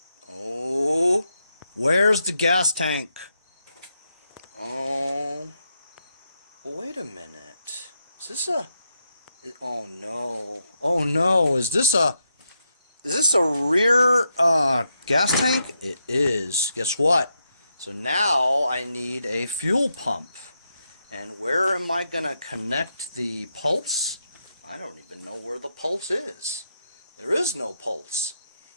Oh, where's the gas tank? Oh, wait a minute. Is this a... Oh no. Oh no, is this a rear gas tank? It is. Guess what? So now I need a fuel pump. And where am I going to connect the pulse? I don't even know where the pulse is. There is no pulse.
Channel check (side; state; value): both; inverted; correlation -0.83